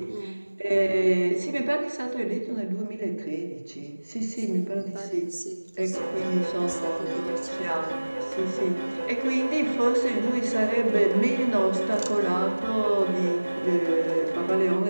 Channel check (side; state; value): both; inverted; correlation -1.00